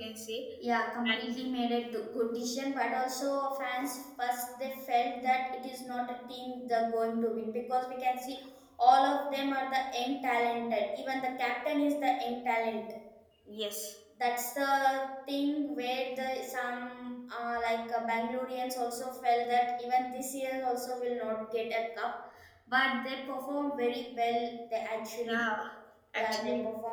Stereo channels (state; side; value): identical; both; correlation 1.00